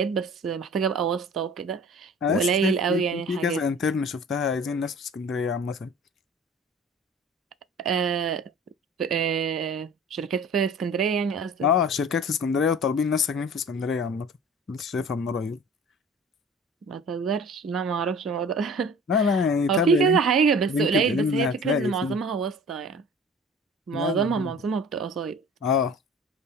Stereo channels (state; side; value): normal; both; correlation 0.43